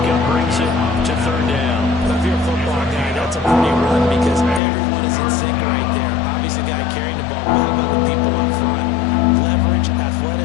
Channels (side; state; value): right; drops out; at 4.6 s